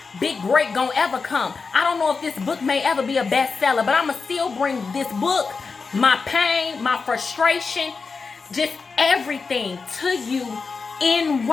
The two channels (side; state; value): right; quieter; 4.7 dB